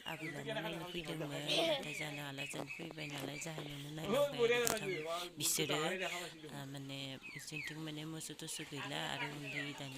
आबैलानो नायनो फैदोंमोन नाथाय जानो हाला जों फैबाय नालाय जाहोनावनो नायलांबाय बिसोरो माने बिसोरथिं माने मोसौ थोसौ गैला आरो उन्दै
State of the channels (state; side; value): identical; both; correlation 1.00